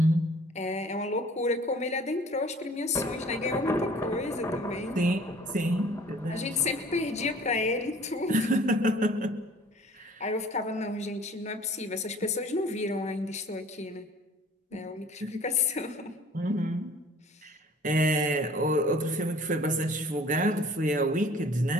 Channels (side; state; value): both; normal; correlation 0.50